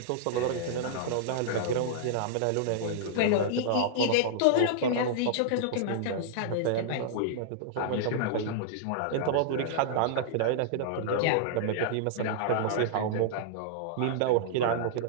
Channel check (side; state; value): both; different; correlation -0.01